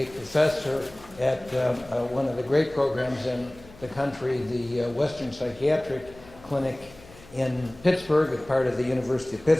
professor at one of the great programs in the country, the Western Psychiatric Clinic in Pittsburgh, as part of the University of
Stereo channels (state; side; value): noise; left; hum, 22 dB below the sound